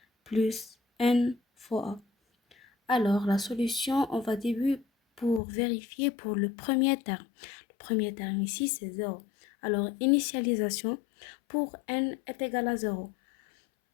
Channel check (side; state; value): right; drops out; at 5.4 s